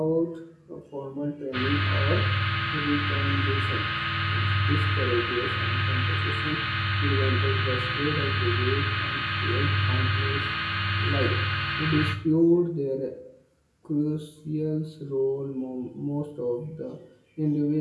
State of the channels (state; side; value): identical; both; correlation 1.00